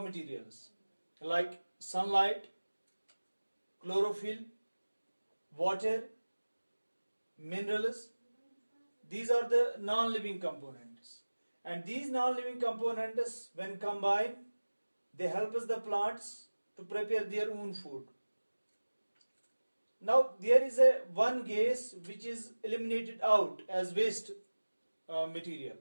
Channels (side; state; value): both; inverted; correlation -1.00